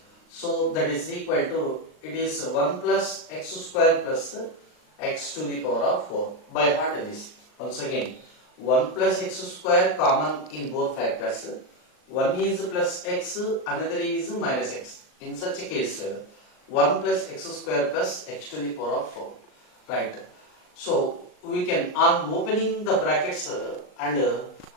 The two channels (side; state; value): right; late; 39 ms